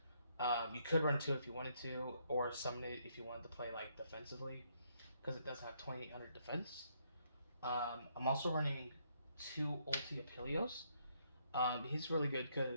You could run 2 if you wanted to, or summon it if you wanted to play like defensively, because it does have 2800 defense. I'm also running 2 Ulti Apelios. He's really good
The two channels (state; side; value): inverted; both; correlation -0.72